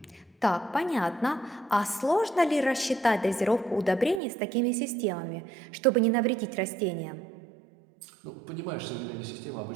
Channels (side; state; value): left; drops out; at 4.2 s